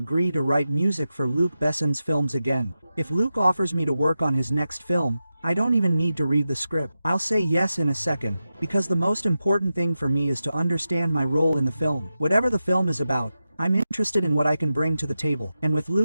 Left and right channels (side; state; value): both; inverted; correlation -0.92